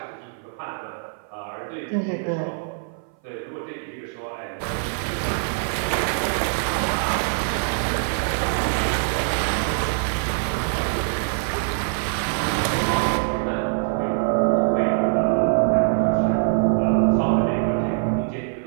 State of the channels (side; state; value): left; silent; 57 dB below the other